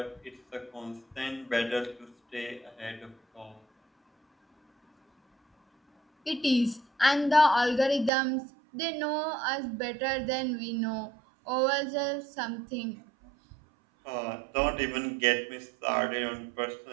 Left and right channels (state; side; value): drops out; left; at 8.1 s